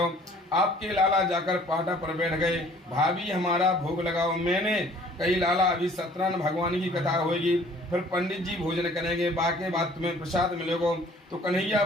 आपके लाला जाकर पाटा पर बैठ गए, भाभी हमारा भोग लगाओ। मैंने कही लाला अभी सत्यनारायण भगवान की कथा होगी, फिर पंडित जी भोजन करेंगे, बाकी बात तुम्हें प्रसाद मिलेगा। तो कन्हैया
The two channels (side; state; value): both; normal; correlation 0.54